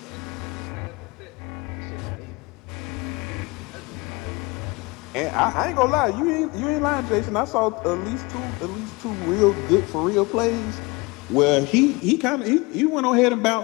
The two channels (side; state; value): right; quieter; 25.4 dB